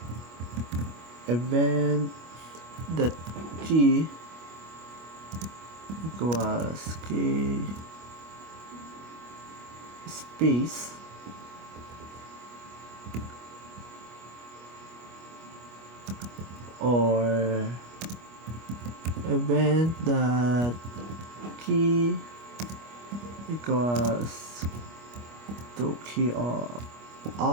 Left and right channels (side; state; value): left; late; 25 ms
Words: event that key equals key space, or event that key equals to key